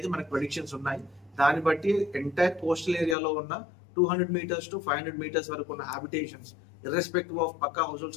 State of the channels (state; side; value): drops out; right; at 3.2 s